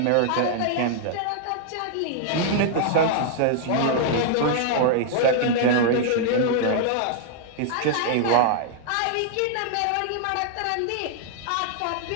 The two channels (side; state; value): both; different; correlation 0.00